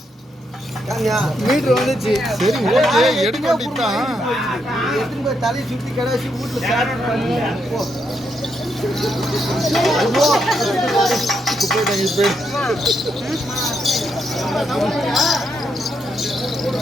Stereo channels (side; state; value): both; normal; correlation 0.79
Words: மீட்டர் வந்துச்சு. சரி ஓகே எடுக்க வேண்டியதுதான். எடுத்துன்னு போய் தலையை சுத்தி கடாசி வீட்டுல சாப்பிட்டு